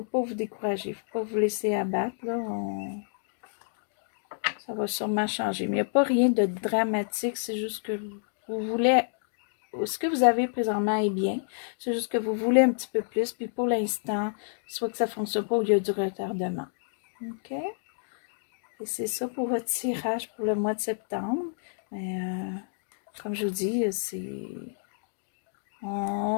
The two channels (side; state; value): right; silent; digital silence